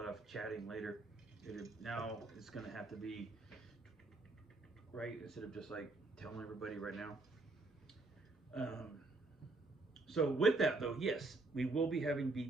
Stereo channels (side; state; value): left; quieter; 3.3 dB